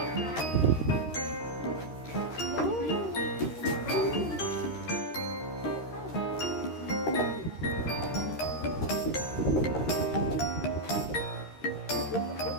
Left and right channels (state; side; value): late; right; 13 ms